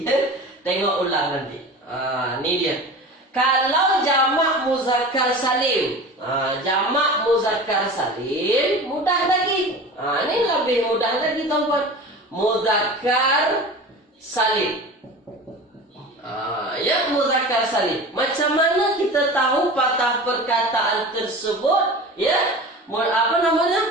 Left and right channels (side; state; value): both; normal; correlation 0.35